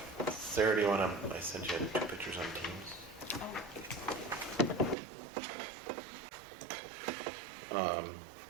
Sarah, do you want to, I sent you 2 pictures on Teams.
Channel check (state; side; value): drops out; left; at 5.0 s